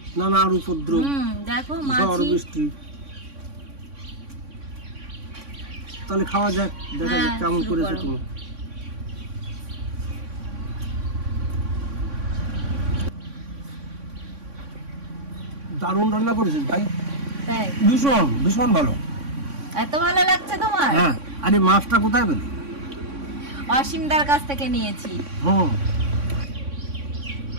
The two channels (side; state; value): left; late; 3.6 ms